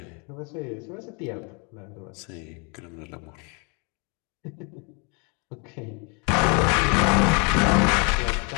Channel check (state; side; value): quieter; right; 34.0 dB